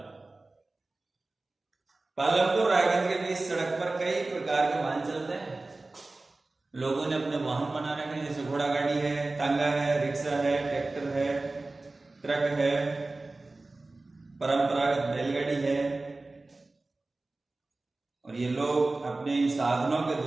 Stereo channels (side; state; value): left; quieter; 3.2 dB